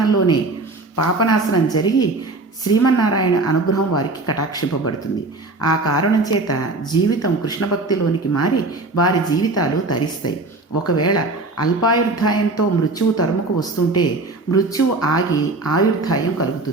పాపనాశనం జరిగి శ్రీమన్నారాయణ అనుగ్రహం వారికి కటాక్షింపబడుతుంది. ఆ కారణం చేత జీవితం కృష్ణభక్తిలోనికి మారి వారి జీవితాలు తరిస్తాయి. ఒకవేళ అల్పాయుర్ధాయంతో మృత్యువు తరుముకు వస్తుంటే మృత్యువు ఆగి ఆయుర్ధాయం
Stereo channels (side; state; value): left; quieter; 3.2 dB